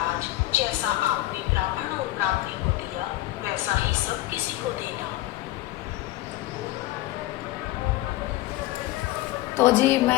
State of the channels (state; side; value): quieter; right; 16.6 dB